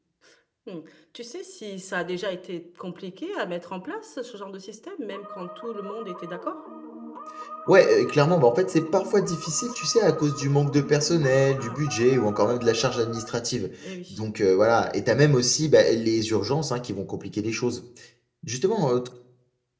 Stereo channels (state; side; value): identical; both; correlation 1.00